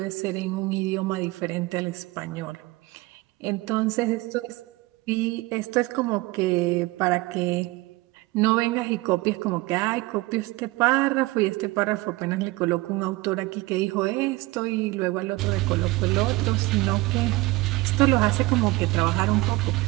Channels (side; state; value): left; quieter; 20.9 dB